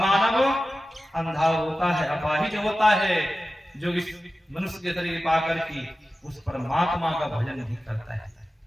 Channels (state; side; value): normal; both; correlation 0.94